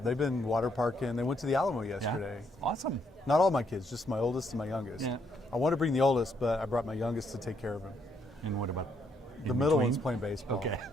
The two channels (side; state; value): both; normal; correlation 0.73